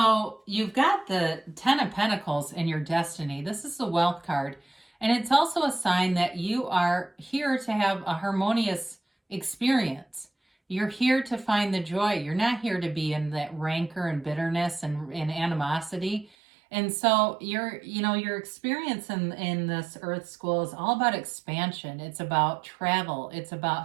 you've got the Ten of Pentacles in your destiny. This is the Wealth card. And it's also a sign that you are here to have a harmonious experience. You're here to find the joy. You're not here to be in that rancor and bitterness and animosity. And so your experience in this Earth School is all about expansion. It's about travel. It's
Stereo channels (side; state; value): left; drops out; at 16.3 s